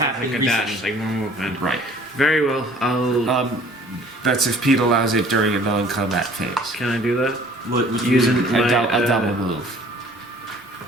happened like a dash, recently. like more movement. Right. Very well. I'll. That's if Pete allows it during a non-combat phase. Can I do that? what Using you, my, A double move.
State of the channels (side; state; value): both; normal; correlation 0.53